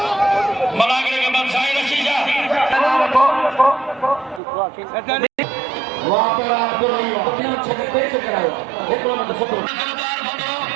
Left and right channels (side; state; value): left; drops out; at 4.4 s